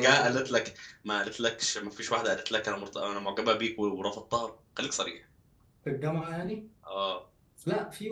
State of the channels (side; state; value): both; identical; correlation 1.00